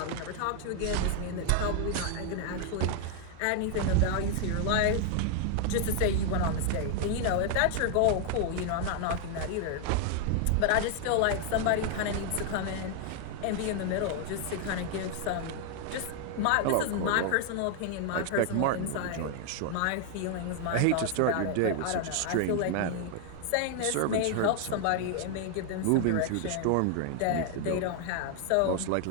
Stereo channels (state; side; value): different; both; correlation 0.00